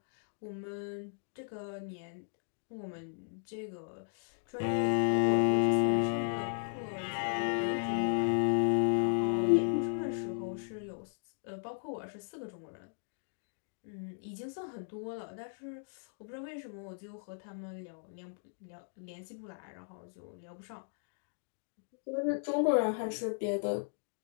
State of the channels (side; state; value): right; silent; digital silence